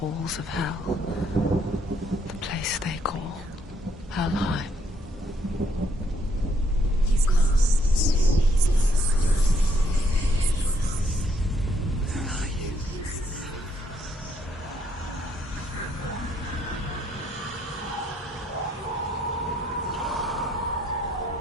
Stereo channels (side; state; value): both; normal; correlation 0.71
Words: of hell. The place they call Helheim. He's lost. He's lost. Where are you?